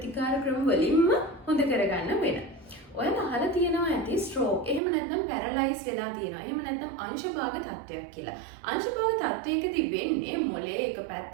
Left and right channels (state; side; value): drops out; left; at 4.8 s